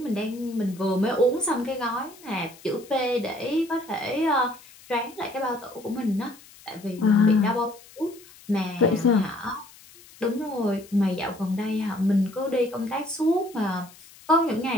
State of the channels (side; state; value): left; noise; hiss, 23 dB below the sound